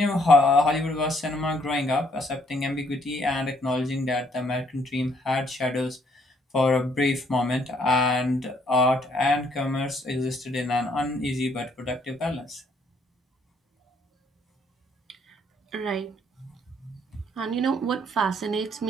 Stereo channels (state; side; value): normal; both; correlation 0.67